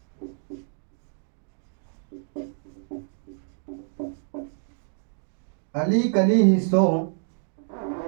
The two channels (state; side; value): silent; left; digital silence